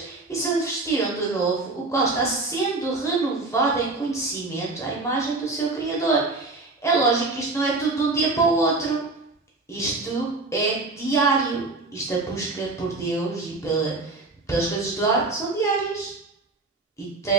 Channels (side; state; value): left; quieter; 3.3 dB